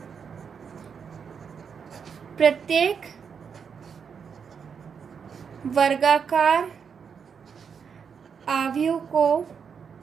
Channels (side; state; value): left; quieter; 6.6 dB